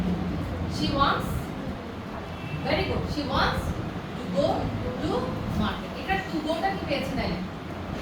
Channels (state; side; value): identical; both; correlation 1.00